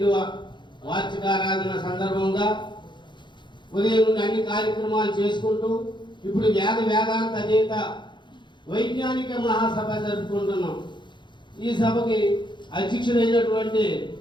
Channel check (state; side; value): late; right; 0.22 ms